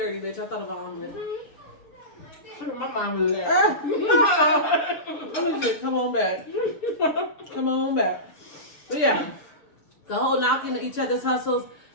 bitch. I thought about omelet. My mom was there. I'm just come on back. Come on back. But yeah, the whole knocking each other's hustles.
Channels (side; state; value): right; late; 6.9 ms